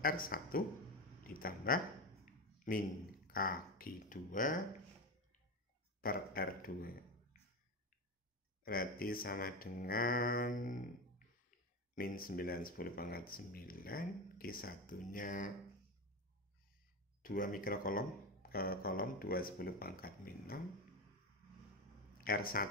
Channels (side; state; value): both; normal; correlation 0.19